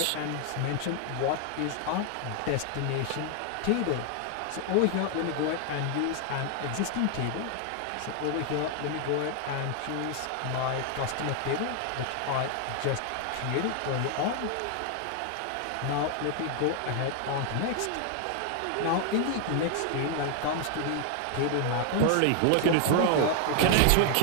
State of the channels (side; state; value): both; different; correlation 0.00